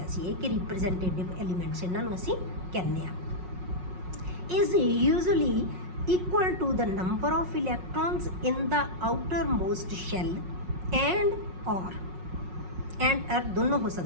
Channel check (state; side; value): late; left; 5.5 ms